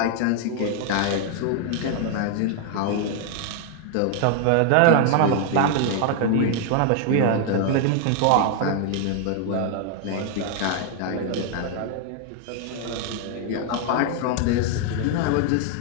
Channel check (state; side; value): different; both; correlation 0.00